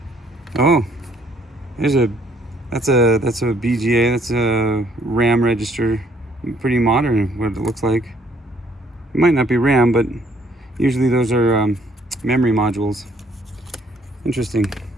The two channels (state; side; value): normal; both; correlation 0.65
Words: Oh, that's a BGA. That's a RAM register. Pretty modern, what it looks like. It might not be RAM, but usually those are memory modules. Interesting.